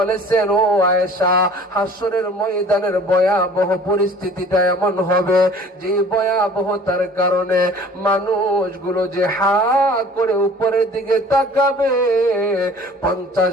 ও আয়েশা, হাসরের ময়দানের ভয়াবহ পরিস্থিতিটা এমন হবে যে ভয়াবহতার কারণে মানুষগুলো যে হা করে উপরের দিকে তাকাবে,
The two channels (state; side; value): normal; both; correlation 0.48